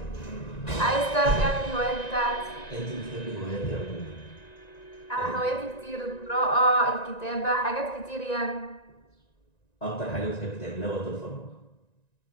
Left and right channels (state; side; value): late; right; 1.9 ms